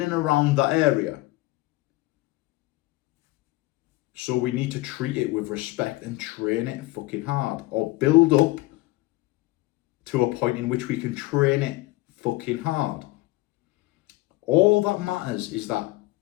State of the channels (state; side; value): quieter; right; 20.1 dB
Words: and around that area. So we need to treat it with respect and train it fucking hard, or build up to a point in which we can train it fucking hard. All that matters is that